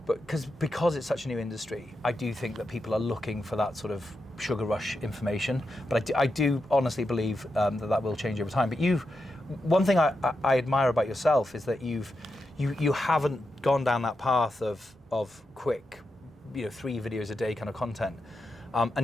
But because it's such a new industry, I do think that people are looking for that sort of sugar rush information. But I do honestly believe that will change over time. But one thing I admire about yourself is that you haven't gone down that path of quick, 3 videos a day kind of content,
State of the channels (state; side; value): normal; both; correlation 0.87